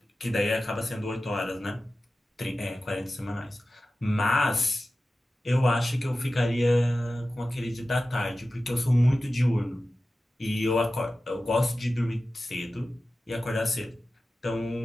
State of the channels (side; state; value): both; normal; correlation 0.94